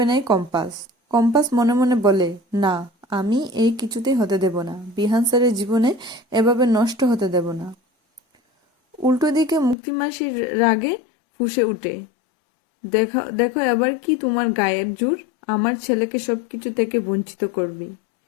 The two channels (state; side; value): drops out; right; at 9.8 s